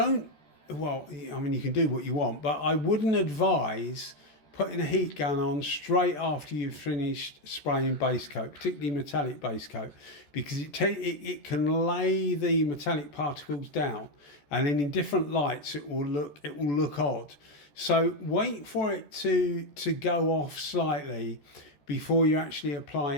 well, I mean, you can do what you want, but I wouldn't advise putting a heat gun on straight after you've finished spraying base coat, particularly metallic base coat, because it can lay the metallic particles down, and then in different lights it will look odd. So wait for it to go off slightly before you actually apply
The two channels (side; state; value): right; late; 14 ms